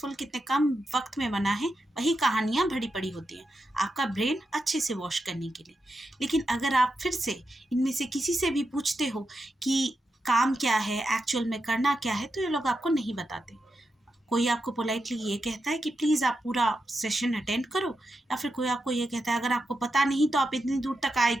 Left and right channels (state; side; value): normal; both; correlation 0.87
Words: कितने कम वक्त में बना है, वही कहानियाँ भरी पड़ी होती हैं आपका ब्रेन अच्छे से वॉश करने के लिए। लेकिन अगर आप फिर से इनमें से किसी से भी पूछते हो कि काम क्या है, एक्चुअल में करना क्या है, तो ये लोग आपको नहीं बताते। कोई आपको पोलाइटली ये कहता है कि प्लीज़ आप पूरा सेशन अटेंड करो, या फिर कोई आपको ये कहता है अगर आपको पता नहीं तो आप इतनी दूर तक आए